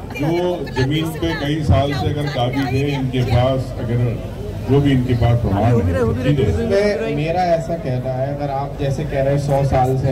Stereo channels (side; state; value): both; identical; correlation 1.00